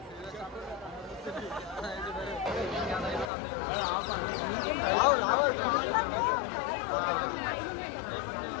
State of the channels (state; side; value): drops out; right; at 3.3 s